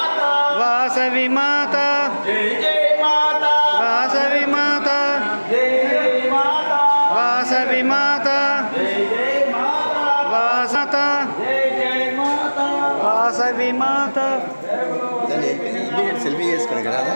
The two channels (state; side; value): inverted; both; correlation -1.00